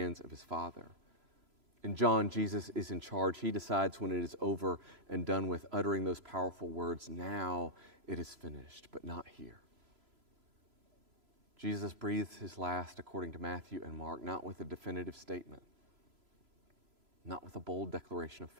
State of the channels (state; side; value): late; left; 3.0 ms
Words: of his Father. In John, Jesus is in charge. He decides when it is over and done with, uttering those powerful words, now it is finished, but not here. Jesus breathes his last, according to Matthew and Mark, not with a definitive statement, not with a bold declaration of